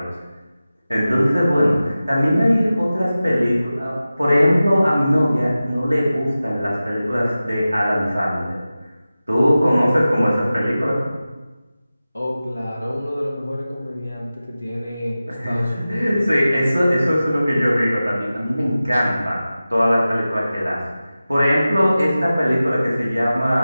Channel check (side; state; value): both; inverted; correlation -0.95